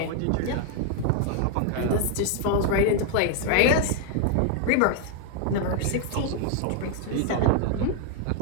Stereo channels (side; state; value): both; different; correlation 0.00